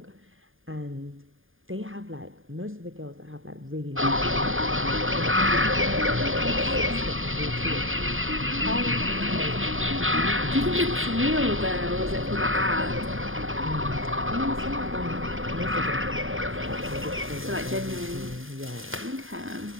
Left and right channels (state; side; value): late; left; 0.59 ms